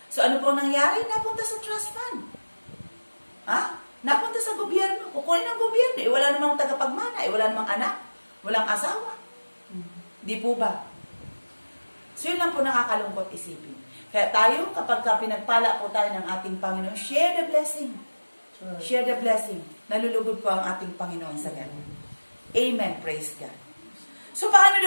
So ano po nangyari? Napunta sa trust fund. Napunta sa gobyerno. Kukunin ng gobyerno. Wala namang tagapagmana. Wala namang anak. Walang asawa. Di po ba? So yun lang po nakakalungkot isipin. Kaya tayo, kapag pinagpala po tayo ng ating Panginoon, share the blessing. Sure. Share the blessing. Nalulugod po ang ating Panginoon sa ganun. Amen. Praise God. So, paano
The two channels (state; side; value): inverted; both; correlation -1.00